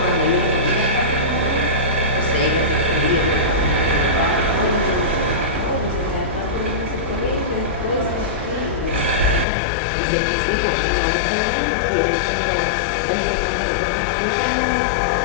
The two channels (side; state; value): right; drops out; at 9.5 s